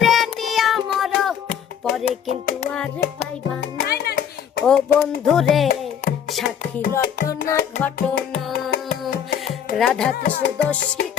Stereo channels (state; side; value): quieter; right; 8.5 dB